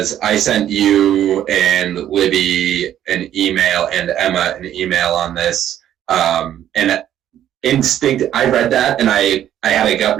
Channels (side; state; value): left; quieter; 11.2 dB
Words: I sent you and Libby an email and Emma an email on this, and I read that and I had a gut